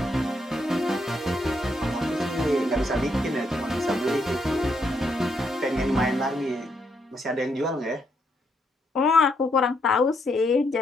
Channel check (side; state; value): both; normal; correlation 0.76